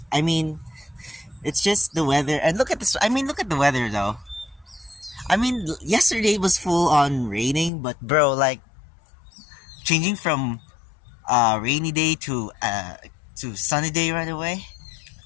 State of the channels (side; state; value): right; drops out; at 7.7 s